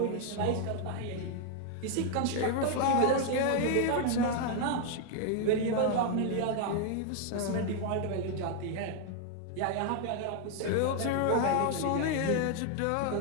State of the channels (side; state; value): both; different; correlation 0.00